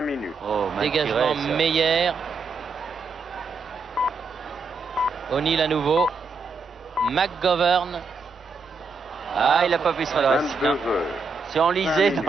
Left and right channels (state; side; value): quieter; left; 4.2 dB